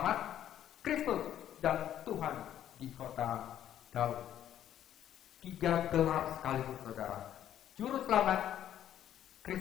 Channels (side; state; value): right; quieter; 11.0 dB